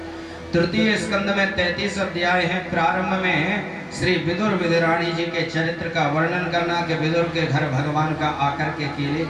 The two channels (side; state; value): both; identical; correlation 1.00